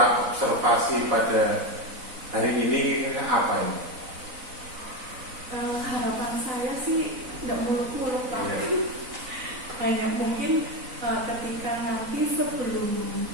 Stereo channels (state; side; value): late; left; 4.0 ms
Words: pada hari ini apa ini? Harapan saya sih tidak muluk-muluk Pak. Iya. Hanya mungkin ketika nanti sebelum